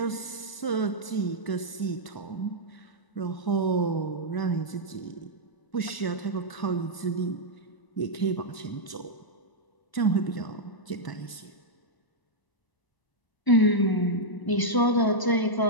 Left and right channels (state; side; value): late; right; 1.0 ms